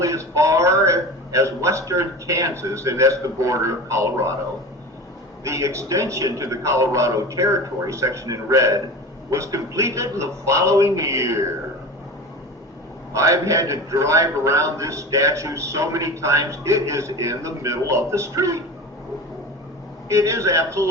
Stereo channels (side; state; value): both; normal; correlation 0.32